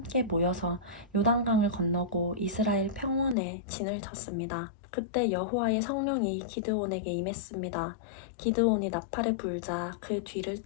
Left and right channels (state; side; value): drops out; right; at 3.4 s